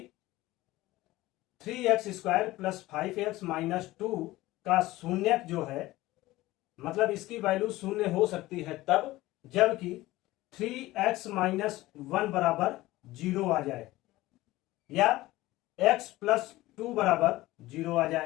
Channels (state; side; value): quieter; right; 17.8 dB